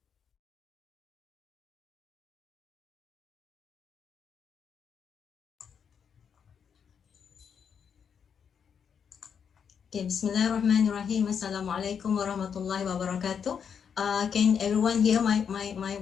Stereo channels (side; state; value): right; quieter; 7.2 dB